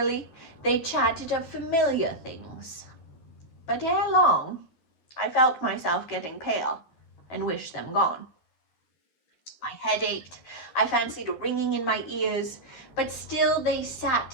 they chatted of familiar things. But ere long, I felt myself getting pale, and wished them gone. My head ached, I fancied a ringing in my ears, but still they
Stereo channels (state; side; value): late; right; 12 ms